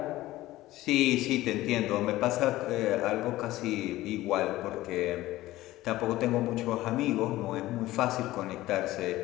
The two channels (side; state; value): right; quieter; 16.6 dB